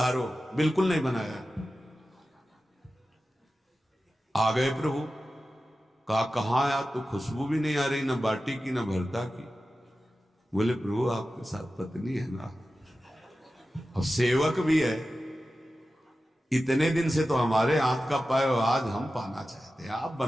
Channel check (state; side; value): normal; both; correlation 0.94